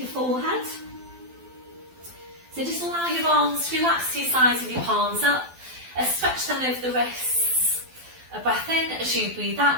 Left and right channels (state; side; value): late; left; 12 ms